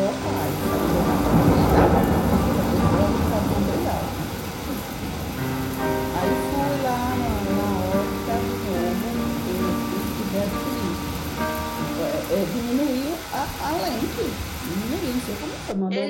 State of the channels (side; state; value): both; identical; correlation 1.00